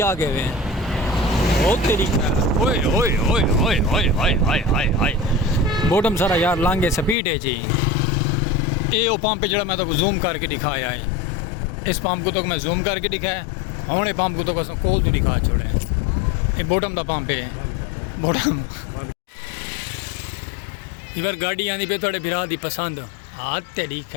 आ गए हैं ओ तेरी ओए ओए ओए ओए ओए ओए हाय हाय हाय बॉटम सारा यार लांगे स्पीड है जी। ये वो पंप जो मैं तो जूम करके दिखाया है, इस पंप को तो मैं जूम करके दिखाया हूँ, पंप को तो बस कोल तो दिखा छोड़े। ये बॉटम का पंप है बॉटम। इधर गाड़ी आनी पे थोड़े बिरा दी पसंद हाँ तेरी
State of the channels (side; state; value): right; drops out; at 7.2 s